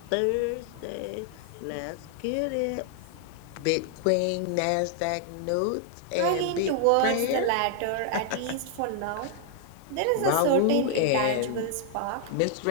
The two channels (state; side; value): different; both; correlation 0.00